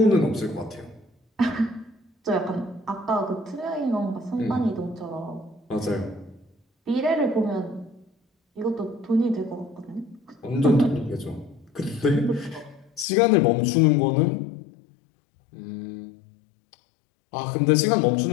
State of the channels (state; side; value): drops out; right; at 13.1 s